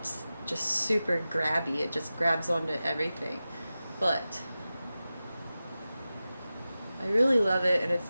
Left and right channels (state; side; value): inverted; both; correlation -0.94